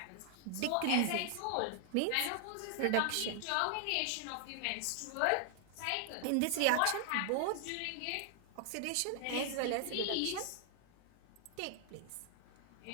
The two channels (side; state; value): both; different; correlation 0.00